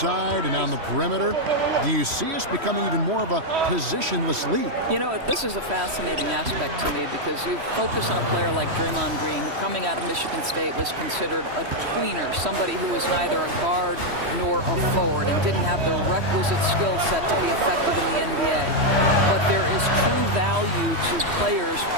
and on the perimeter. Do you see us becoming even more of a positionless league? You know, this is a fascinating aspect to me because you focus on a player like Draymond Green, who coming out of Michigan State was considered a tweener, somebody who was neither a guard nor a forward and didn't have the requisite skill set to be effective in the NBA. But there is true value to players,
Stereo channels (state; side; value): late; left; 3.1 ms